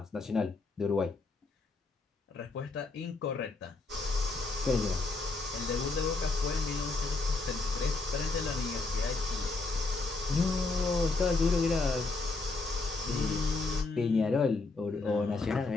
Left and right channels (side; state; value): right; quieter; 3.6 dB